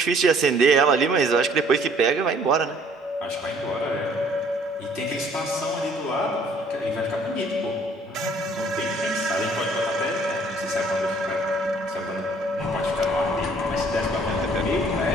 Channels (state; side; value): normal; both; correlation 0.59